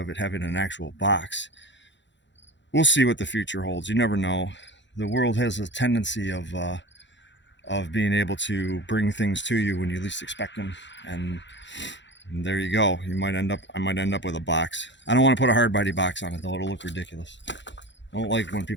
it having an actual box. We'll see what the future holds. You never know. The world has a tendency of being able to bring things to you when you least expect them, and there you go. I might end up with a box. I don't want to put a hard body box on it though. It'll look ridiculous. I don't like when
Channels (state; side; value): late; right; 0.53 ms